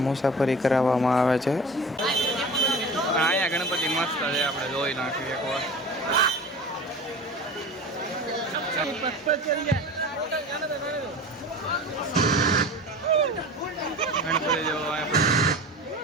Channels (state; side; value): normal; both; correlation 0.36